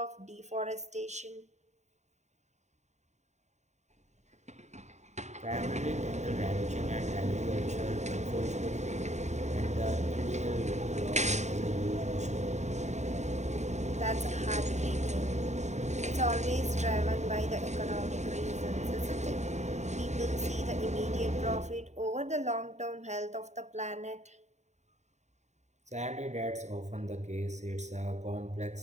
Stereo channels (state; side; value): late; left; 0.34 ms